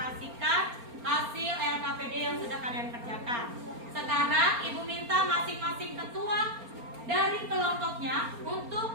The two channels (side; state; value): left; late; 4.3 ms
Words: hasil LKPD yang sudah kalian kerjakan. Sekarang Ibu minta masing-masing ketua dari kelompoknya